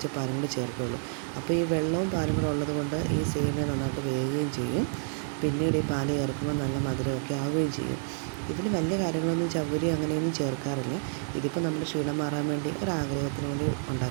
പാലും കൂടി ചേർക്കുകയുള്ളൂ. അപ്പോൾ ഈ വെള്ളവും പാലും കൂടെ ഉള്ളത് കൊണ്ട് ഈ സേമിയ നന്നായിട്ട് വേകുകയും ചെയ്യും. പിന്നീട് ഈ പാല് ചേർക്കുമ്പോൾ നല്ല മധുരമൊക്കെ ആവുകയും ചെയ്യും. ഇതിൽ വലിയ കാര്യങ്ങളൊന്നും ചവ്വരി അങ്ങനെയൊന്നും ചേർക്കാറില്ല. ഇതിപ്പോൾ നമ്മുടെ ക്ഷീണം മാറാൻ വേണ്ടി ഒരാഗ്രഹത്തിന് വേണ്ടി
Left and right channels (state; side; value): silent; left; 58 dB below the other